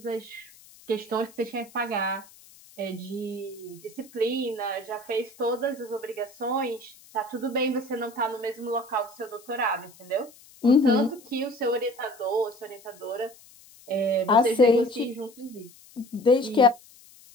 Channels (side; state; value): left; noise; hiss, 24 dB below the sound